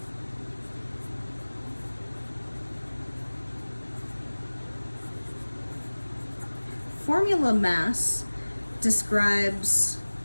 formula mass describes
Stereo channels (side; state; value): both; inverted; correlation -1.00